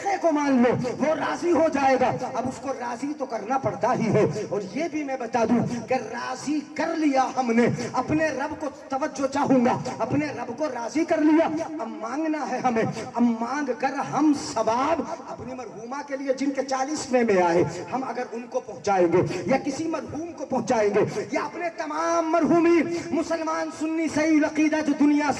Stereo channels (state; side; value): identical; both; correlation 1.00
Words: کو مان لو وہ راضی ہو جائے گا. اب اس کو راضی تو کرنا پڑتا ہی ہے. اور یہ بھی میں بتا دوں کہ راضی کر لیا ہم نے اپنے رب کو، توجہ چاہوں گا، اپنے رب کو راضی کر لیا. اب مانگنا ہے ہمیں. اب مانگ کر ہم ثواب اپنی مرحومہ کے لیے جن کے 40ویں میں آئے ہم اگر ان کو پہنچائیں گے یا کسی مرحوم کو پہنچائیں گے یا اپنے تمام مرحومین مسلمان سنی صحیح العقیدہ جو دنیا